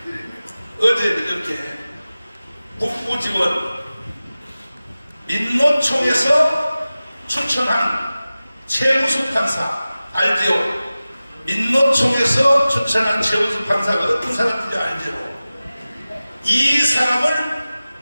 어제 이렇게 북부지원 민노총에서 추천한 최우수 판사 알지요? 민노총에서 추천한 최우수 판사가 어떤 사람인지 알지요? 이 사람을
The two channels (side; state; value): both; inverted; correlation -0.96